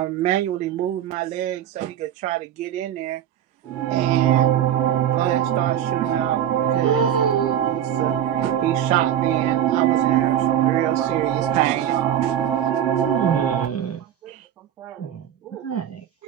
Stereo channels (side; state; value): left; quieter; 10.5 dB